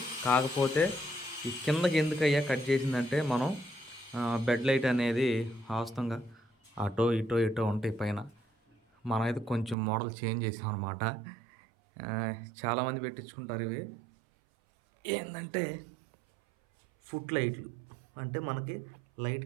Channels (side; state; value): left; drops out; at 9.8 s